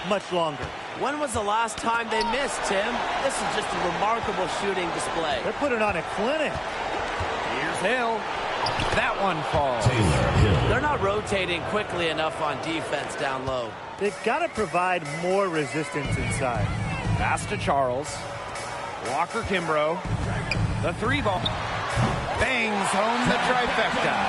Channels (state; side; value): identical; both; correlation 1.00